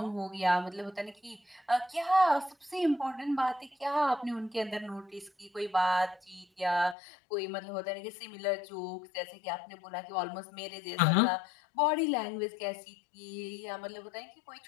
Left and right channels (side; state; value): right; drops out; at 7.0 s